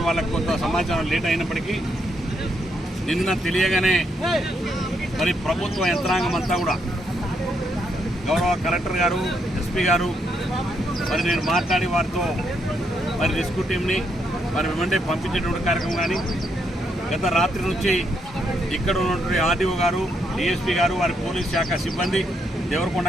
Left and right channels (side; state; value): both; normal; correlation 0.77